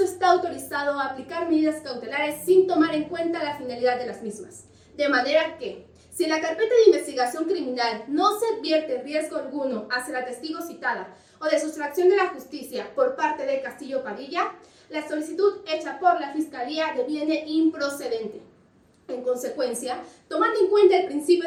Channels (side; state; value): both; identical; correlation 1.00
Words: está autorizado a aplicar medidas cautelares sin tomar en cuenta la finalidad de las mismas. De manera que, si en la carpeta de investigación criminal no se advierte riesgo alguno hacia la testigo citada o de sustracción de la justicia por parte de Castillo Padilla, la solicitud hecha por la Fiscalía deviene improcedente. En consecuencia, tomando en cuenta el principio